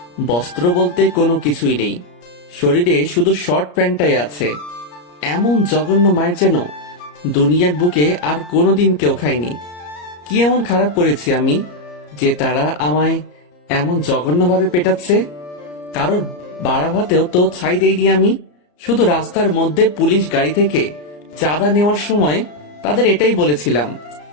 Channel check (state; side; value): late; right; 34 ms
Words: বস্ত্র বলতে কোনো কিছুই নেই, শরীরে শুধু শর্ট প্যান্টটাই আছে। এমন জঘন্য মায়ের যেন দুনিয়ার বুকে আর কোনোদিন কেউ খায়নি। কি এমন খারাপ করেছি আমি যে তারা আমায় এমন জঘন্যভাবে পেটাচ্ছে? কারোর বাড়া ভাতেও তো ছাই দেইনি আমি। শুধু রাস্তার মধ্যে পুলিশ গাড়ি থেকে চাঁদা নেওয়ার সময় তাদের এটাই বলেছিলাম